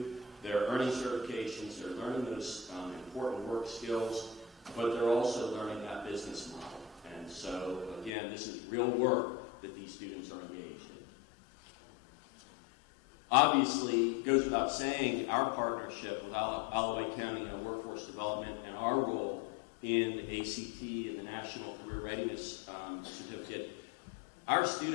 they're earning certifications, they're learning those important work skills, but they're also learning that business model. And so, again, this is real work that these students are engaged in. Obviously, it goes without saying, our partnership with Allouez County and Workforce Development and our role in ACT and the National Career Readiness Certificate. Our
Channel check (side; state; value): right; drops out; at 8.1 s